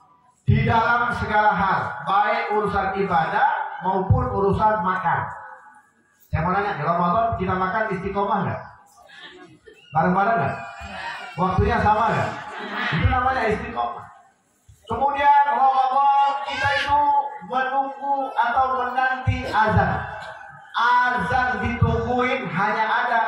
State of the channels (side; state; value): both; identical; correlation 1.00